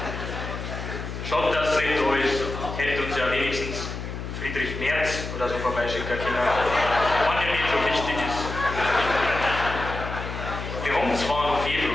Schade, dass es nicht da ist. Hätte uns ja wenigstens Friedrich Merz oder so vorbeischicken können. Wenn der nicht so wichtig ist. Wir haben zwar noch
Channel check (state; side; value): noise; left; hum, 7 dB below the sound